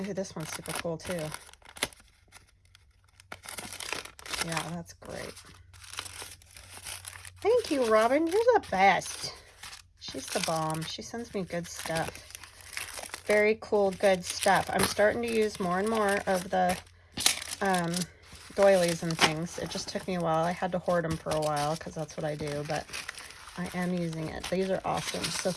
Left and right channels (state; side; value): identical; both; correlation 1.00